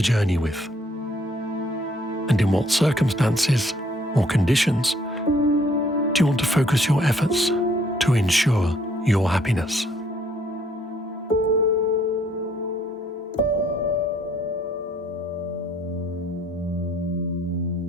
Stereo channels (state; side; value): normal; both; correlation 0.64